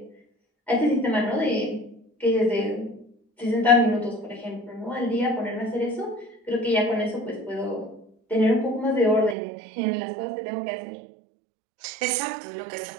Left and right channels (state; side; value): drops out; left; at 9.3 s